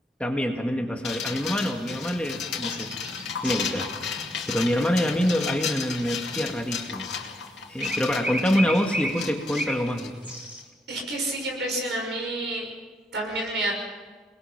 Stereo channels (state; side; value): normal; both; correlation 0.76